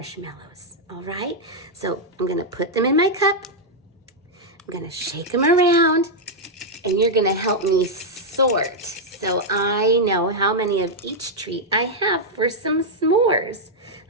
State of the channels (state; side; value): normal; both; correlation -0.03